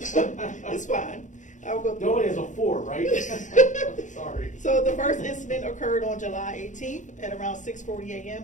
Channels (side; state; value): right; late; 0.36 ms